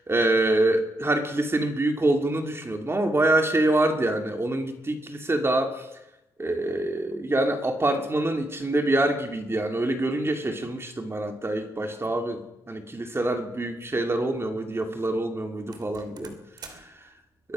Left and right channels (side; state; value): both; normal; correlation 0.81